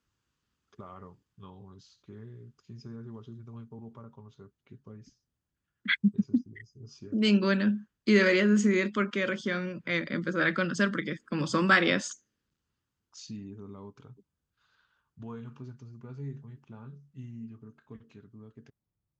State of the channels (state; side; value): identical; both; correlation 1.00